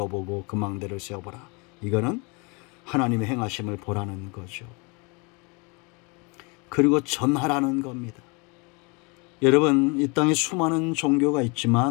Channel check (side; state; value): right; quieter; 30.4 dB